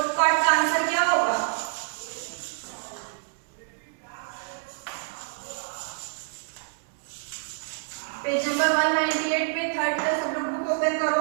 पार्ट का आंसर क्या होगा? पेज नंबर 198 पे थर्ड का सब लोग बुक ओपन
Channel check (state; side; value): silent; left; 60 dB below the other